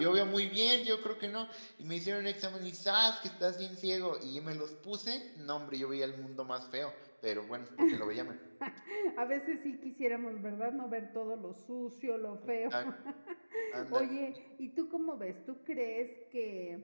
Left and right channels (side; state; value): both; inverted; correlation -1.00